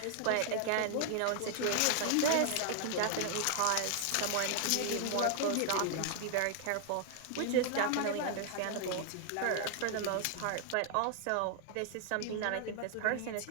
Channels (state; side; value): different; both; correlation 0.00